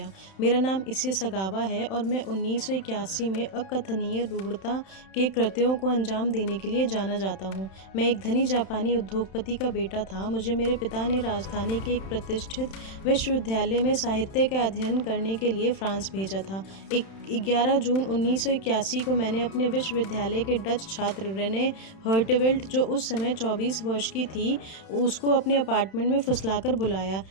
मेरा नाम इसे सगावा है और मैं 1981 में अकथनीय रूढ़ता के कृत्यों को अंजाम देने के लिए जाना जाता हूँ। मैं एक धनी जापानी उद्योगपति का बेटा था। मुझे मेरे पिता ने राजधानी के एक प्रतिष्ठित विश्वविद्यालय में साहित्य का अध्ययन करने के लिए फ्रांस भेजा था। 11 जून 1981 को मैंने अपने विश्वविद्यालय के डच छात्र रेने हर्टेवेल्ट, जो उस समय 24 वर्ष की थी, उसको अपने अपार्टमेंट में फुसलाकर बुलाया।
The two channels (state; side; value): late; right; 31 ms